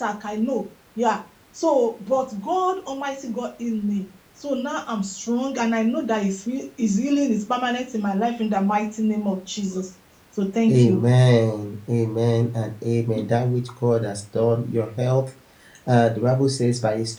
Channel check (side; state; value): both; identical; correlation 1.00